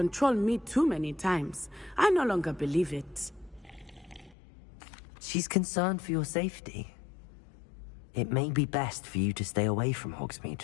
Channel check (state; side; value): drops out; right; at 4.4 s